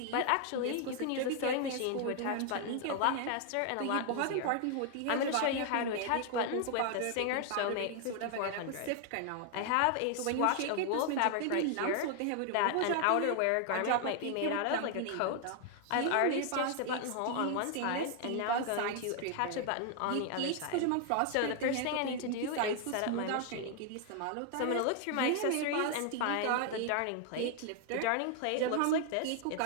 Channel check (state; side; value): different; both; correlation 0.00